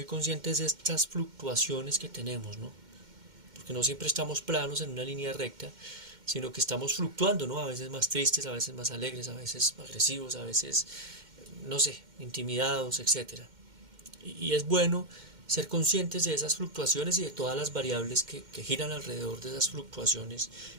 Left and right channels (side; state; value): left; late; 2.1 ms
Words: conscientes de estas fluctuaciones que tenemos, ¿no? Porque no siempre estamos planos en una línea recta, sino que estamos fluctuando, ¿no? A veces más tristes, a veces más alegres, a veces agresivos, a veces, no sé, intimidados, etcétera. Y es bueno ser conscientes de esas fluctuaciones y de todas las variables que giran alrededor de esas fluctuaciones